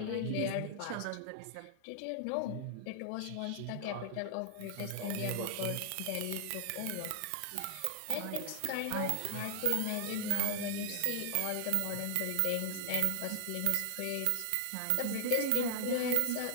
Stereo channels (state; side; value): different; both; correlation 0.00